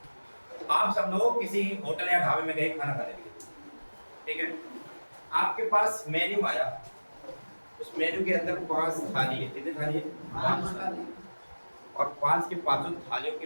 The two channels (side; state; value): both; inverted; correlation -1.00